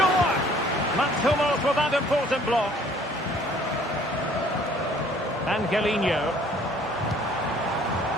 Mats Hummels with that important block. Angelino.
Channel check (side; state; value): right; noise; hum, 25 dB below the sound